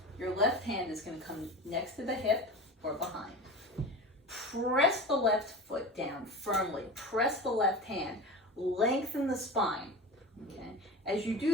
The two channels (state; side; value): normal; both; correlation 0.30